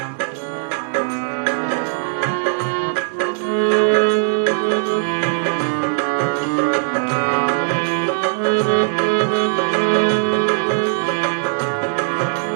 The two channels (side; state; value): left; silent; 65 dB below the other